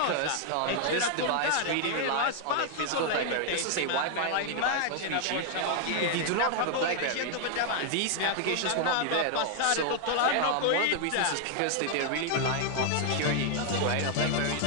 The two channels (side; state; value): both; different; correlation 0.00